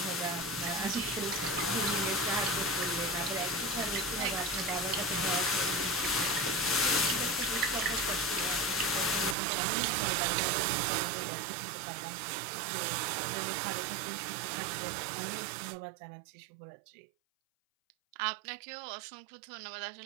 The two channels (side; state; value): left; drops out; at 9.3 s